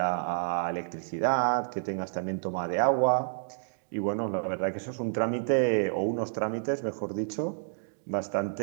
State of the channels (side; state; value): left; silent; digital silence